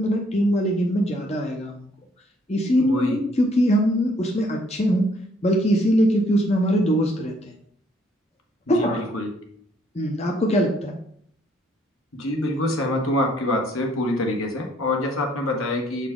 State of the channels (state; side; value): normal; both; correlation 0.65